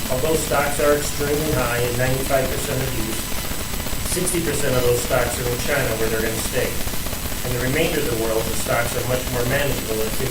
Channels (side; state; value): both; identical; correlation 1.00